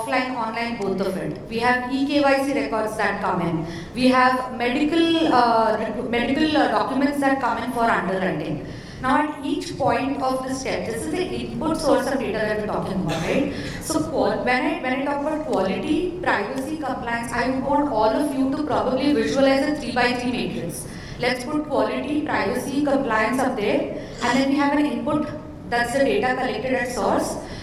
online, both of it. We have eKYC records that come in. We have medical documents that come in for underwriting. Now at each point of the step, this is the input source of data that we're talking about, right? So when I talk about quality, privacy, compliance, I want all of you to probably visualize a 3x3 matrix. Let's put quality, privacy, compliance up there, and then we have an input, that's the data collected at source.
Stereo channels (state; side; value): identical; both; correlation 1.00